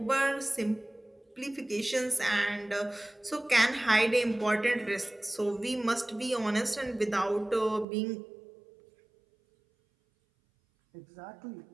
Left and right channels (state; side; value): drops out; left; at 7.9 s